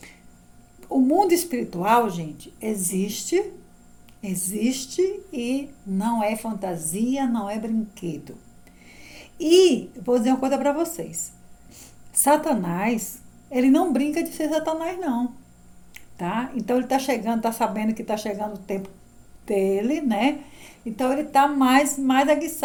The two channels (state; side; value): identical; both; correlation 1.00